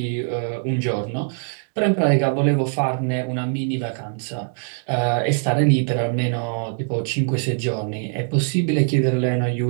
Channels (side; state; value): left; silent; 57 dB below the other